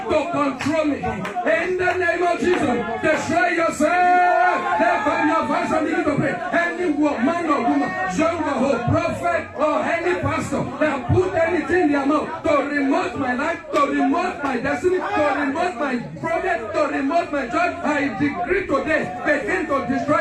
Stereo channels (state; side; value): identical; both; correlation 1.00